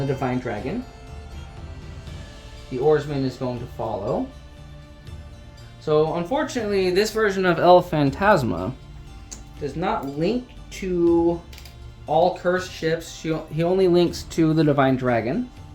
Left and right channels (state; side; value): identical; both; correlation 1.00